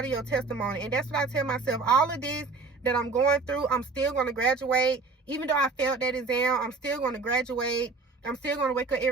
of your testimony. And that's what I tell myself. All of this that I'm going through, I'm still going to graduate. Even though I failed that exam, I'm still going to graduate. I'm still going to wake up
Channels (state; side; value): quieter; left; 4.0 dB